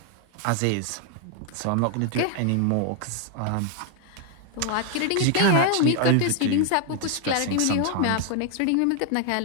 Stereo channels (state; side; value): different; both; correlation 0.00